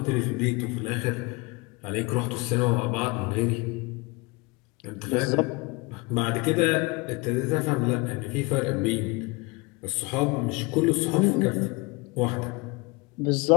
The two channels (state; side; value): quieter; right; 26.1 dB